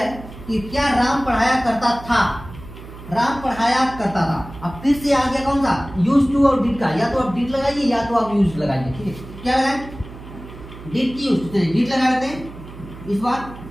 कि क्या राम पढ़ाया करता था, अब फिर से आ गया कौन सा, यूज टू और डिड का, या तो आप डिड लगाइए या तो आप यूज लगाइए। ठीक है, क्या लगाए, डिड की यूज, डिड लगा देते हैं इस बार।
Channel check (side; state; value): right; noise; hum, 15 dB below the sound